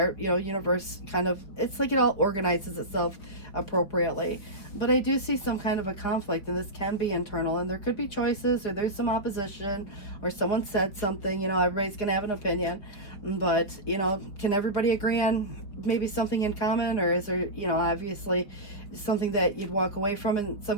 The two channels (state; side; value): late; right; 4.9 ms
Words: you know, universe kind of, it's like it all organizes itself appropriately. But I do see some kind of a conflict, and this can be internal, and there could be choices, or there's some opposition, or someone said something. You know, everybody's gonna have an opinion, but you know, can everybody agree on maybe something in common, or is there, you know, obviously something that you'd walk away from in